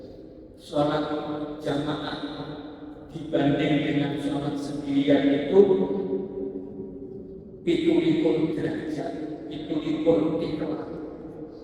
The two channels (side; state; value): both; identical; correlation 1.00